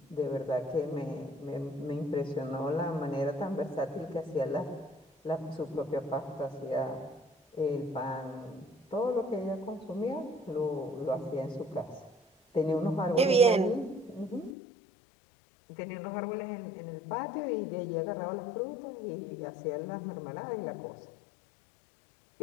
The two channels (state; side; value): drops out; right; at 14.5 s